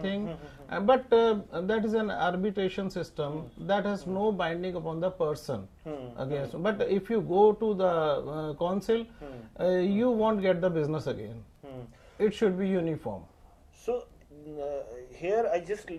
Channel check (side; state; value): both; identical; correlation 1.00